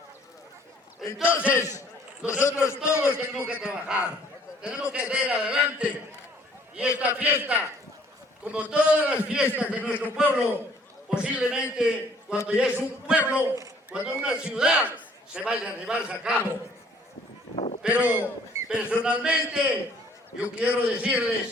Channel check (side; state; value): both; normal; correlation 0.59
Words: Entonces, nosotros todos tenemos que trabajar, tenemos que hacer adelante, y esta fiesta, como todas las fiestas de nuestro pueblo, posiblemente cuando ya es un pueblo, cuando una ciudad, se vaya a llevarse a cabo. Pero personalmente, yo quiero